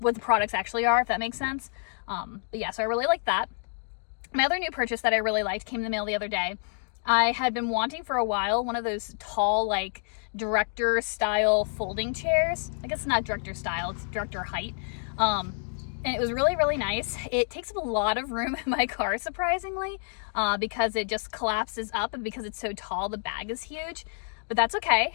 the products actually are, if that makes sense. But yeah, so I really like that. My other new purchase that I really liked came in the mail the other day. I had been wanting for a while one of those tall, like, director style folding chairs. I guess it's not director style, it's director height. And it was really nice. It takes up a lot of room in my car, surprisingly, because it just collapses up, and because it's so tall, the bag is huge. But that's okay.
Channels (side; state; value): right; silent; digital silence